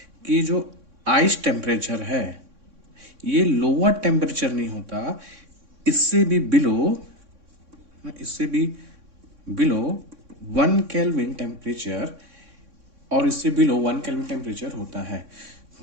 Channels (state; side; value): late; left; 3.6 ms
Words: कि जो आइस टेम्परेचर है ये लोअर टेम्परेचर नहीं होता, इससे भी बिलो 1 केल्विन टेम्परेचर, और इससे बिलो 1 केल्विन टेम्परेचर होता है।